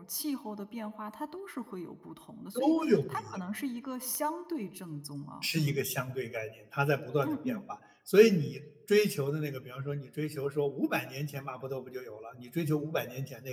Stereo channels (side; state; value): both; identical; correlation 1.00